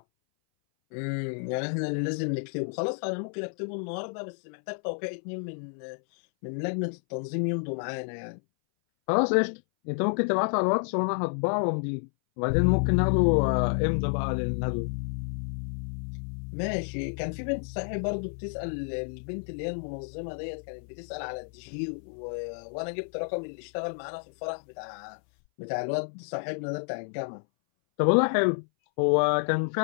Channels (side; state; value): right; silent; 58 dB below the other